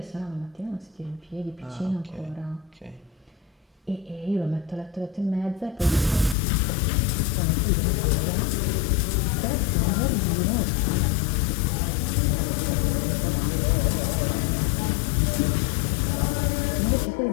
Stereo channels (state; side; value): drops out; right; at 6.4 s